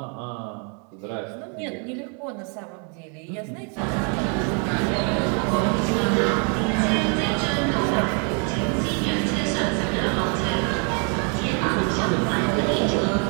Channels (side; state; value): left; quieter; 38.0 dB